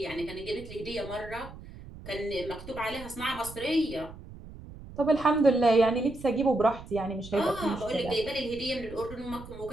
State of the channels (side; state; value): right; noise; rumble, 15 dB below the sound